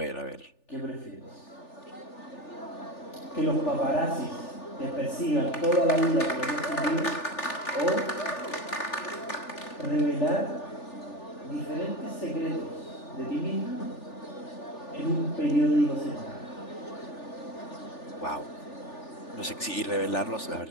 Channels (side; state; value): right; late; 3.4 ms